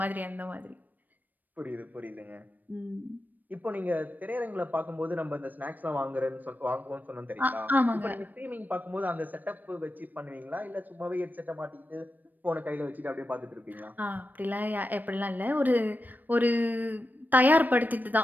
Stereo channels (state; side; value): late; left; 0.087 ms